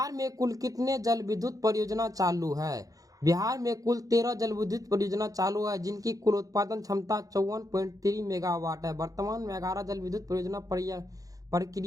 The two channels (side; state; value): left; late; 0.17 ms